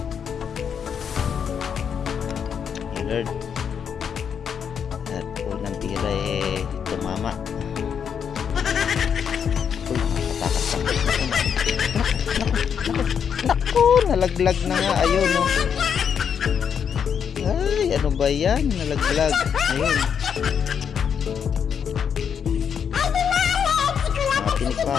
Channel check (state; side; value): quieter; right; 7.5 dB